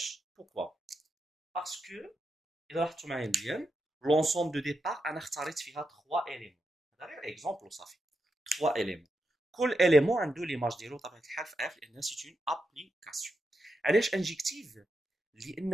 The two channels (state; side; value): normal; both; correlation 0.86